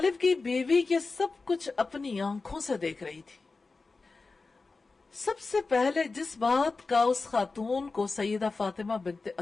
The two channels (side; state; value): right; quieter; 3.9 dB